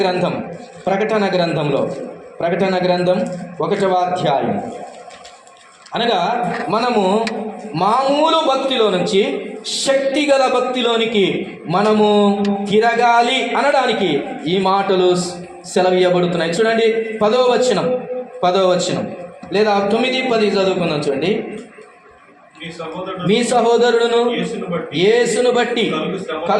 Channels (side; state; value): both; identical; correlation 1.00